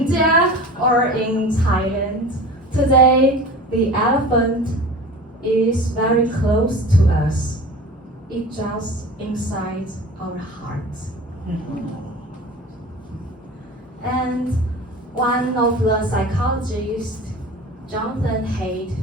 or in Thailand. Today the elephant is very close to us. It's just inside our hearts. And one of the psychologists, Jonathan Haidt,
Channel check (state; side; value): normal; both; correlation 0.37